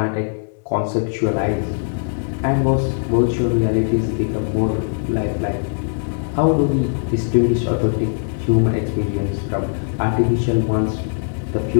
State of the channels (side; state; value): right; silent; 66 dB below the other